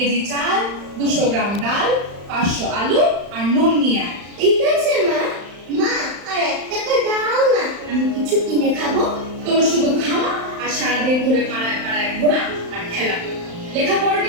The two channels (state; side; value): late; left; 35 ms